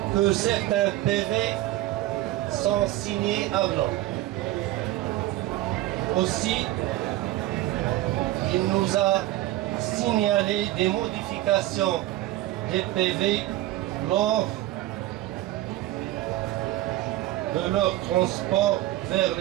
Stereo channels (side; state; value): left; quieter; 15.8 dB